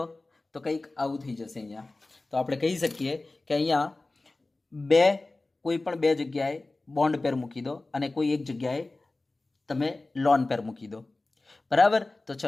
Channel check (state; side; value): quieter; right; 3.1 dB